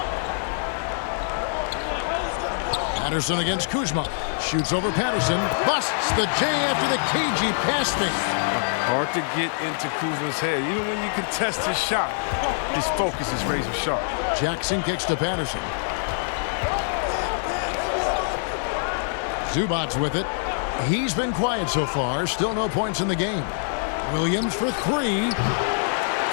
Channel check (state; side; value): silent; right; digital silence